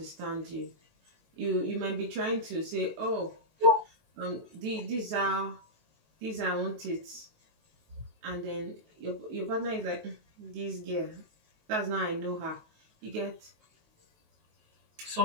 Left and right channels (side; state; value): left; late; 19 ms